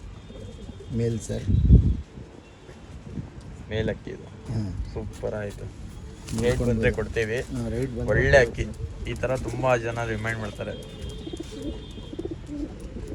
ಮೇಲ್ ಸರ್. ಮೇಲ್ ಅಕ್ಕಿ ಇದು. ಹಾಂ, ಸೂಪರ್ ಆಯಿತು. ರೇಟ್ ಬಂದರೆ ಕೊಡ್ತೀವಿ. ರೇಟ್ ಬಂದರೆ ಒಳ್ಳೆ ಅಕ್ಕಿ. ಈ ಥರ ತುಂಬ ಜನ ರಿಮೈಂಡ್ ಮಾಡ್ತಾರೆ.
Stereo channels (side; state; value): both; identical; correlation 1.00